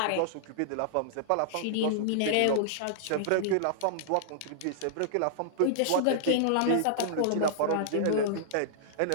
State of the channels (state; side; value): different; both; correlation -0.02